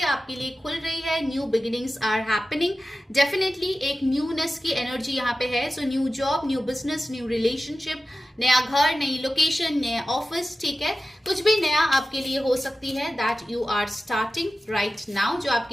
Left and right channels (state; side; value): normal; both; correlation 0.94